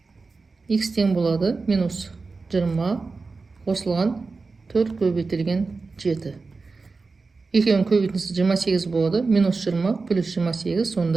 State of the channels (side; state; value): left; quieter; 4.1 dB